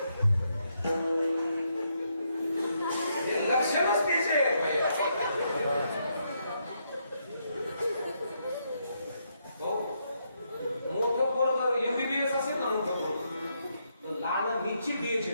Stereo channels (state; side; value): inverted; both; correlation -0.78